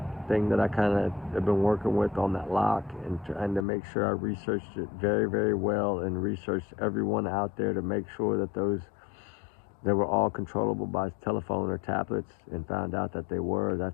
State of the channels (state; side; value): drops out; right; at 3.7 s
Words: thing that I kind of have been working with on that lock and trying to make sure I researched it very, very well and researched everyone out there to make sure that they were all controllable by telephone or tablets, and found out that they were.